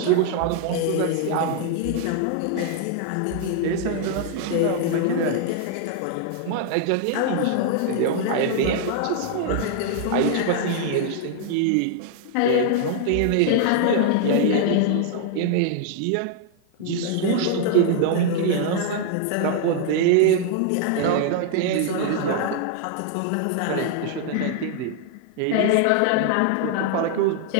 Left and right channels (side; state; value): both; different; correlation -0.01